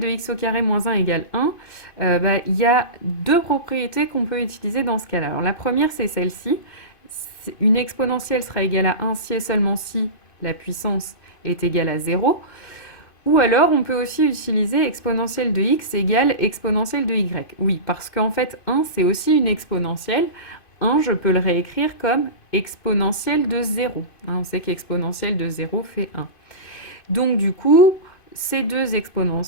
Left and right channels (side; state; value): right; late; 2.5 ms